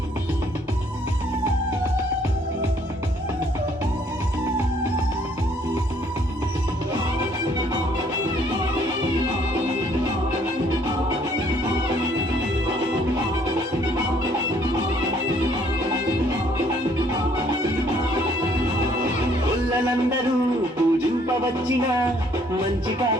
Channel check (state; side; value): normal; both; correlation 0.63